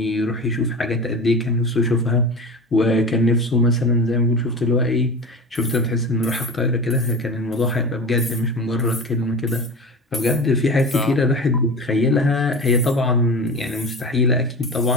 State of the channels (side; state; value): both; normal; correlation 0.30